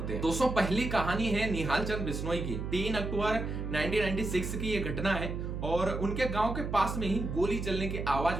हैं। दोस्तों, पहली कहानी है निहाल चंद बिश्नोई की। 3 अक्टूबर 1996 की ये घटना है और उनके गांव के पास में ही गोली चलने की आवाज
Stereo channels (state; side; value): noise; right; hum, 4 dB below the sound